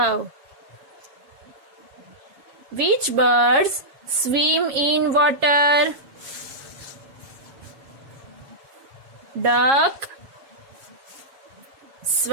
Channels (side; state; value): left; late; 7.3 ms